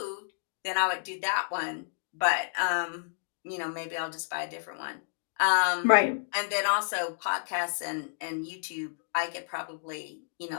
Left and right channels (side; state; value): right; silent; digital silence